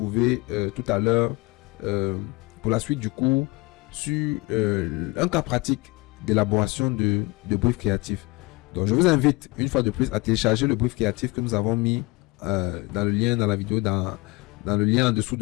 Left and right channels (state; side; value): quieter; right; 24.5 dB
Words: tout à l'heure pour la suite du cours sur un cas pratique d'élaboration de brief créatif. Donc, je vous invite une fois de plus à télécharger le brief créatif que nous avons mis dans le lien dans la vidéo, dans le lien en dessous